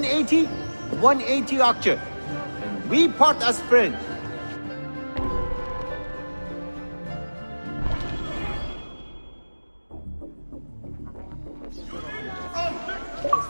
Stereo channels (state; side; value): inverted; both; correlation -1.00